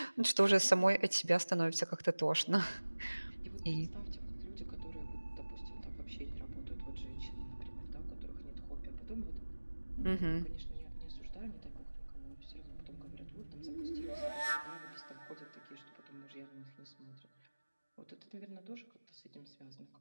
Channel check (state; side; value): inverted; both; correlation -1.00